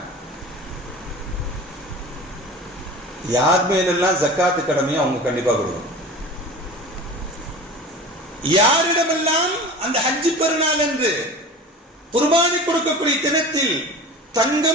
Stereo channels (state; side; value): normal; both; correlation 0.36